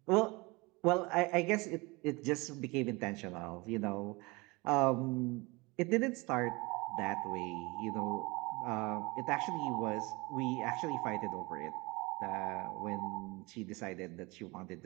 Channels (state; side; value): quieter; left; 25.0 dB